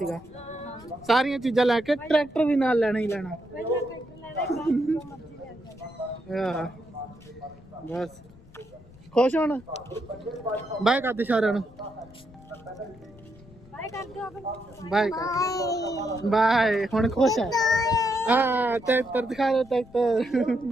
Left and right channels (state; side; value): noise; left; rumble, 23 dB below the sound